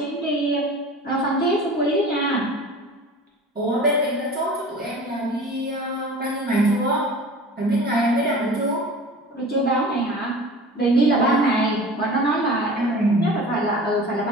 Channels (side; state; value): both; normal; correlation 0.39